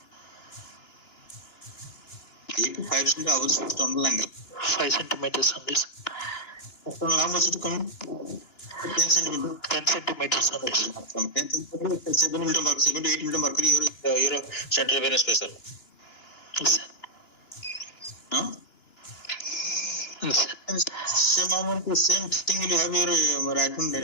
JVP 5 centimeters above this tunnel angle. 5 centimeters on this. How much is it coming? 10 centimeter. 10 centimeters only, sir. From 10 centimeter, 7 millimeter mercury, 7 to 8 millimeter mercury, your central venous pressure. Yes, sir. Huh? Yes, sir. And same amount, the same thing will have your right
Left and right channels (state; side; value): late; right; 2.9 ms